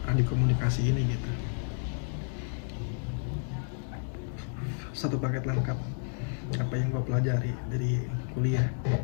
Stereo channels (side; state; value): right; silent; 57 dB below the other